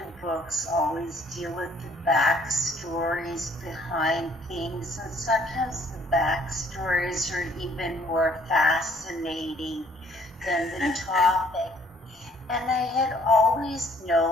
books, always deal with the backstories behind things, and sometimes the backstories are even more fascinating than the topic. And I had always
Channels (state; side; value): normal; both; correlation 0.61